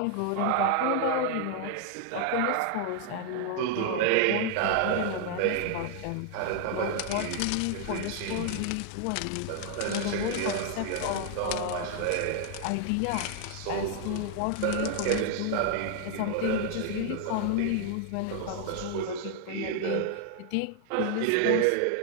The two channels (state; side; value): different; both; correlation 0.00